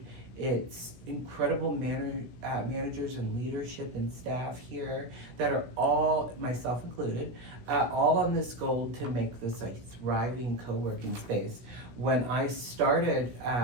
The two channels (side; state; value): left; late; 16 ms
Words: It's incredible managers and leadership and staff here that are all, myself included, all on this goal to make this a thriving co-working space. When I started